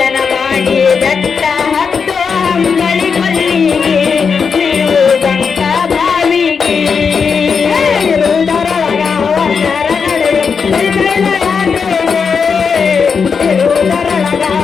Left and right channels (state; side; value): quieter; right; 5.8 dB